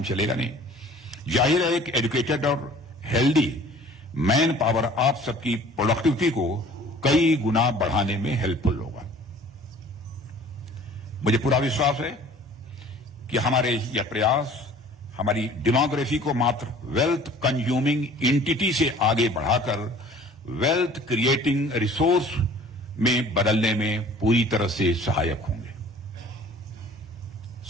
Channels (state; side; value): normal; both; correlation 0.49